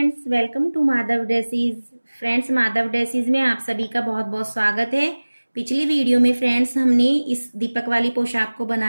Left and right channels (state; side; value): inverted; both; correlation -1.00